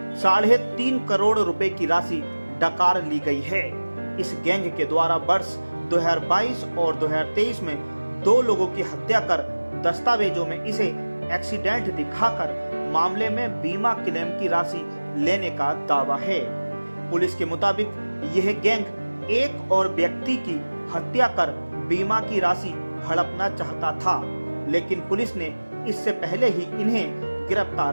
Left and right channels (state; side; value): inverted; both; correlation -1.00